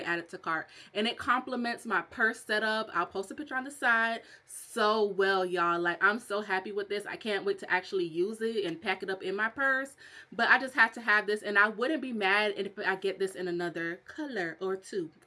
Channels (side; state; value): both; identical; correlation 1.00